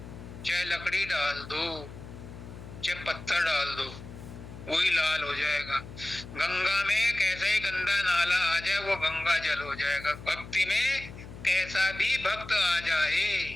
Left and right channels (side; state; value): left; noise; hum, 14 dB below the sound